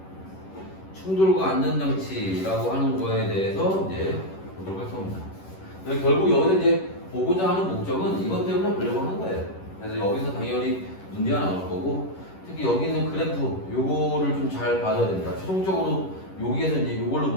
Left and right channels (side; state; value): right; late; 11 ms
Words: 충돌과 안전장치라고 하는 거에 대해서 이제 보도록 할 겁니다. 결국 여기서 이제 보고자 하는 목적은 이것 때문에 보려고 하는 거예요. 그래서 여기서 당연히 문제가 나올 거고, 특히 여기 있는 그래프 요거를 좀 잘 봐줘야 됩니다. 최종적으로 여기에서 이제 요걸로